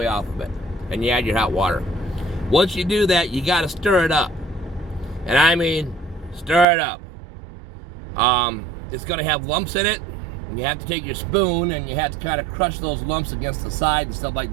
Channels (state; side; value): drops out; left; at 6.7 s